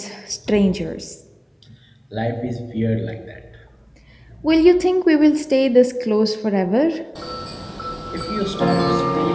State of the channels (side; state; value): both; identical; correlation 1.00